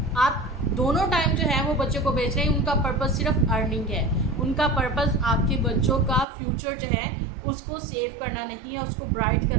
आप दोनों टाइम जो है वो बच्चे को भेज रहे हैं। उनका पर्पज़ सिर्फ अर्निंग है, उनका पर्पज़ आपके बच्चों का फ्यूचर जो है उसको सेव करना नहीं है, उसको ब्राइट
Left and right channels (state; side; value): drops out; left; at 6.2 s